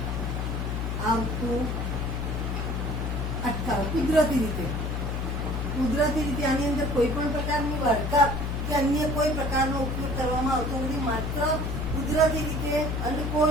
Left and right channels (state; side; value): noise; left; hum, 1 dB below the sound